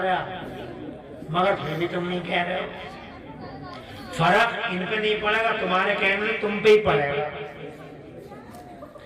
मगर फिर भी तुम नहीं कह रहे हो। फर्क इन पे नहीं पड़ेगा, तुम्हारे कहने से तुम पे ही पड़ेगा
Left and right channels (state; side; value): identical; both; correlation 1.00